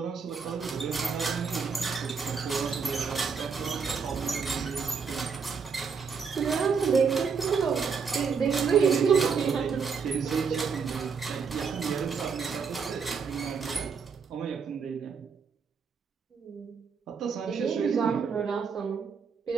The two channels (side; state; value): left; quieter; 5.8 dB